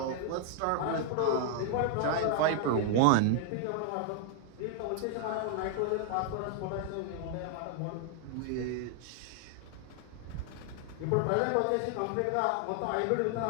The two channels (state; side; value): different; both; correlation 0.00